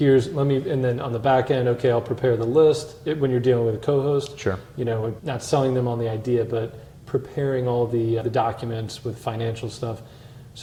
then on the back end, okay, I'll prepare the list when you're dealing with a co-host. Sure. Not selling them on the idea, but preparing all the documents with financial stuff.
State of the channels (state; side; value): identical; both; correlation 1.00